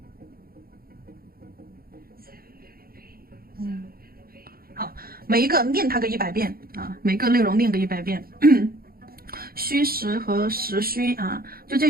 好，每一个练它个100遍啊，每个内容练个100遍。虚实和实虚啊，就这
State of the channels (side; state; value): left; late; 0.43 ms